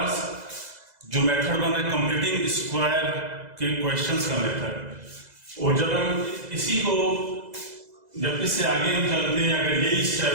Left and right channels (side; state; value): left; late; 2.0 ms